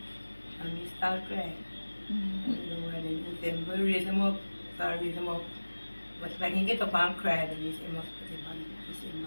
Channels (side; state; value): both; inverted; correlation -1.00